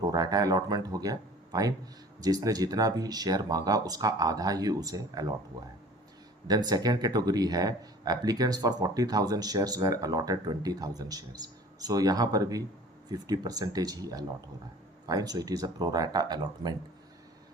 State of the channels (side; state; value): both; normal; correlation 0.46